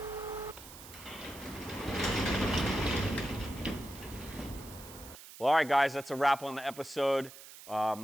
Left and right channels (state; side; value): noise; right; hiss, 16 dB below the sound